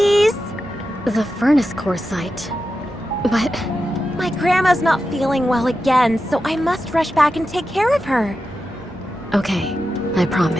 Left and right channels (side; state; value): both; normal; correlation 0.90